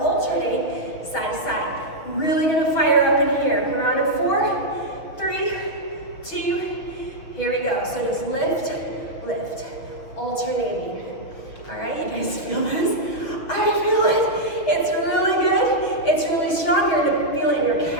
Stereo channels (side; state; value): right; late; 6.0 ms